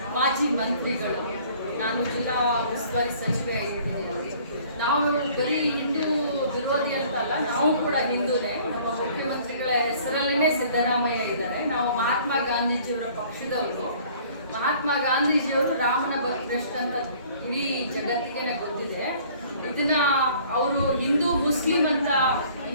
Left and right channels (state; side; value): inverted; both; correlation -0.54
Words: ಮಾಜಿ ಮಂತ್ರಿಗಳು. ನಾನು ಜಿಲ್ಲಾ ಉಸ್ತುವಾರಿ ಸಚಿವೆ ಆಗಿಬಿಟ್ಟಿದ್ದೀನಿ. ನಾವು ಬರೀ ಹಿಂದೂ ವಿರೋಧಿ ಅಂತಲ್ಲ, ನಾವು ಕೂಡ ಹಿಂದೂನೇ. ನಮ್ಮ ಮುಖ್ಯಮಂತ್ರಿಗಳ ಹೆಸರಲ್ಲೇ ಸಿದ್ದರಾಮಯ್ಯ ಇದ್ದಾರೆ. ನಾವು ಮಹಾತ್ಮ ಗಾಂಧೀಜಿಯವರ ಪಕ್ಷದವರು. ಮಹಾತ್ಮ ಗಾಂಧೀಜಿಯವರು ರಾಮನ ಭಕ್ತರಷ್ಟು ಅಂತ ಇಡೀ ಜಗತ್ತಿಗೆ ಗೊತ್ತಿದೆ. ಇದನ್ನ ಅವರು ಹಿಂದೂ ಮುಸ್ಲಿಂ ಅಂತ